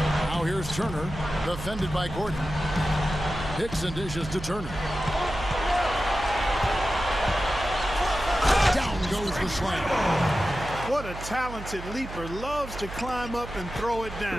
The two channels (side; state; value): right; noise; hum, 11 dB below the sound